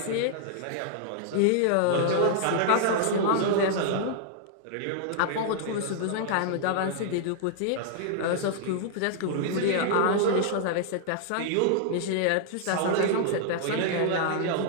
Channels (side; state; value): both; different; correlation -0.01